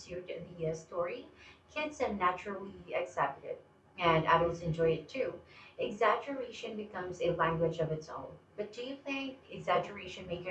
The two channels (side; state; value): both; identical; correlation 1.00